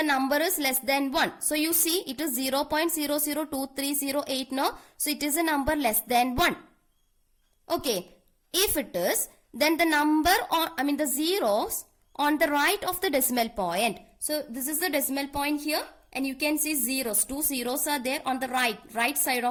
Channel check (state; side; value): identical; both; correlation 1.00